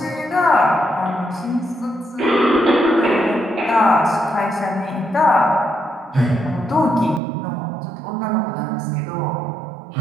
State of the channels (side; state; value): left; drops out; at 7.2 s